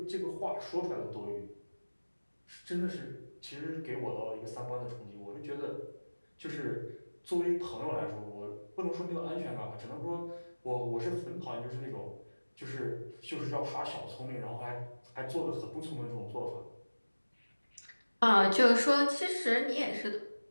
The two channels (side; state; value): both; inverted; correlation -1.00